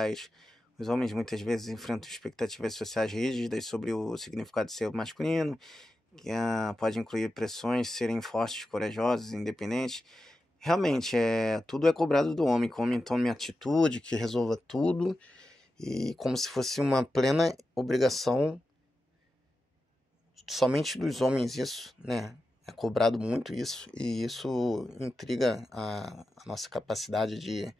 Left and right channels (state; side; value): normal; both; correlation 0.91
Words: Os homens muitas vezes enfrentam expectativas sociais rígidas sobre o significado de ser masculino, que pode incluir pressões, serem fortes, corajosos, independentes. Realmente, tudo é cobrado do homem, que o homem tome atitude, que resolva tudo, e como se fosse uma plena obrigação somente dos homens isso, né? É cobrado muito isso, e isso intriga a nossa capacidade de